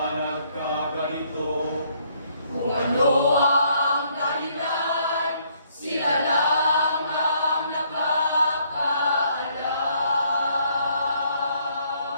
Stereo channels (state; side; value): inverted; both; correlation -0.67